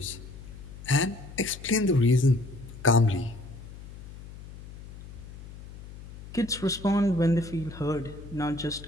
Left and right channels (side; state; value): left; noise; hum, 15 dB below the sound